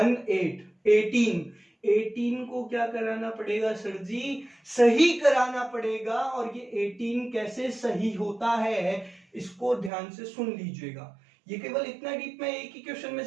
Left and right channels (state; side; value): drops out; left; at 9.9 s